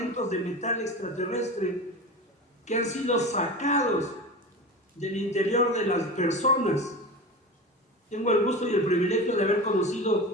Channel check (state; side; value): normal; both; correlation 0.29